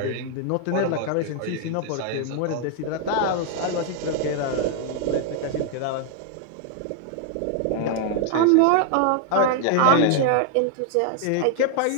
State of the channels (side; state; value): both; different; correlation 0.00